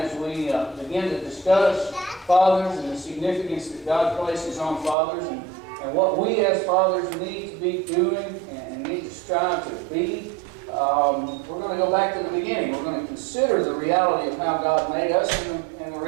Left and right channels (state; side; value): drops out; left; at 5.0 s